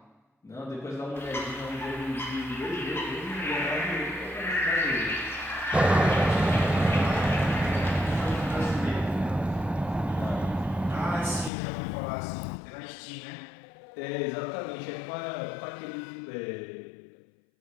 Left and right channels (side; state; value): right; drops out; at 11.5 s